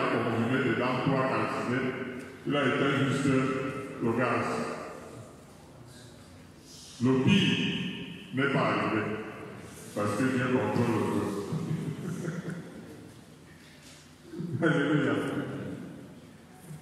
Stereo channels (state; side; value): identical; both; correlation 1.00